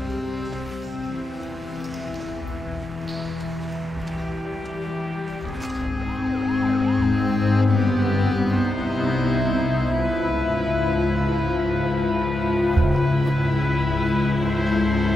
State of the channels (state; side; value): normal; both; correlation 0.87